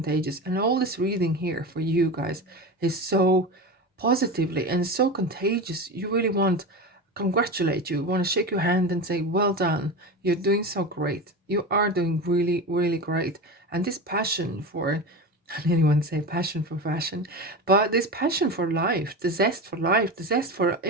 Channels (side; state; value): both; normal; correlation 0.25